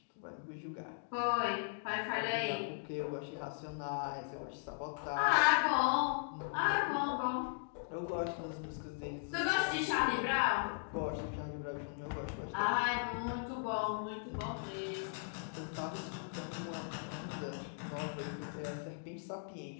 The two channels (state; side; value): silent; right; digital silence